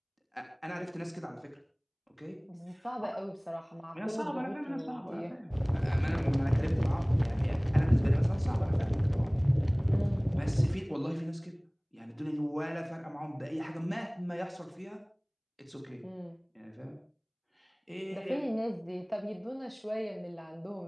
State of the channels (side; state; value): both; identical; correlation 1.00